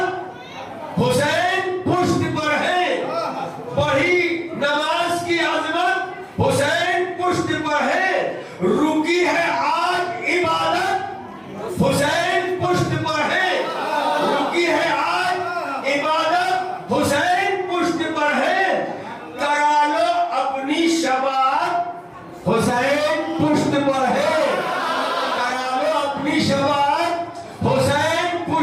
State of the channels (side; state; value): both; identical; correlation 1.00